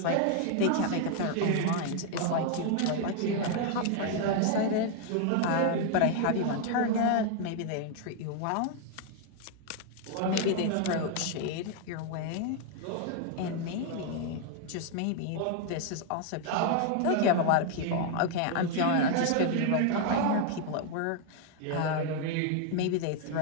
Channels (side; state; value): both; different; correlation 0.00